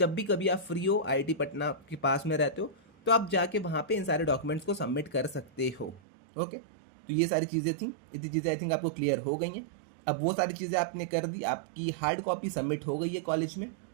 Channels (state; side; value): drops out; left; at 6.0 s